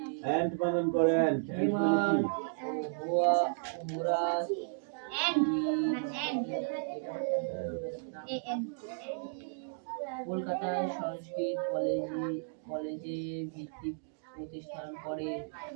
অ্যান্ড বানান করে বিমান ভুয়া মুরা কলকাতায় সংস্কৃত কলেজে ভিত্তি প্রতিষ্ঠান করে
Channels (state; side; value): silent; left; digital silence